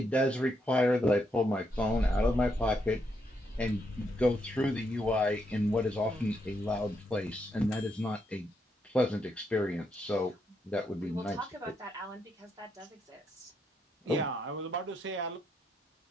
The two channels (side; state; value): both; normal; correlation 0.78